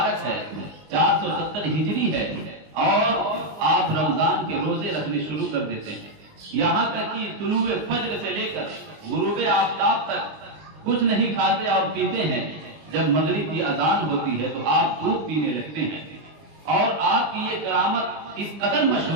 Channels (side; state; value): left; late; 20 ms